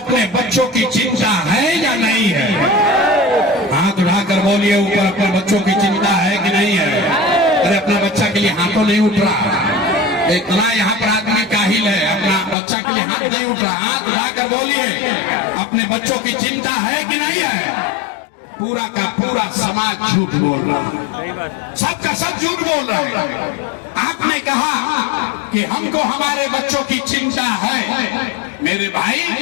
बच्चों की चिंता है या नहीं है? हाथ उठाकर बोलिए ऊपर, अपने बच्चों की चिंता है कि नहीं है? अरे अपना बच्चा के लिए हाथों नहीं उठ रहा, इतना यहाँ पर आदमी काहिल है, अपना बच्चा के लिए हाथ नहीं उठ रहा। हाथ उठाकर बोलिए अपने बच्चों की चिंता है कि नहीं है? पूरा का पूरा समाज झूठ बोल रहा है, सबका सब झूठ बोल रहा है। आपने कहा कि हमको हमारे बच्चों की चिंता है। मेरे भाई,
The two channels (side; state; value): right; drops out; at 12.6 s